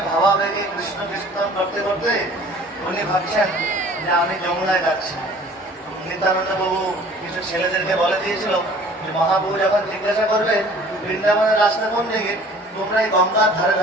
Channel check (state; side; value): normal; both; correlation 0.50